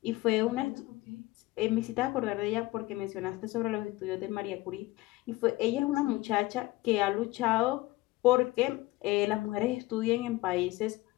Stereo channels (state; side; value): quieter; right; 19.3 dB